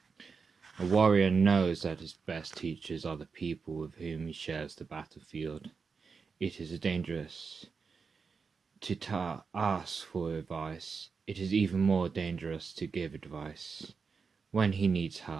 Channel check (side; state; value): left; quieter; 5.2 dB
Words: A warrior knows that his best teachers are the people with whom he shares the battlefield. It is dangerous to ask for advice. It is even more dangerous to give advice. When he needs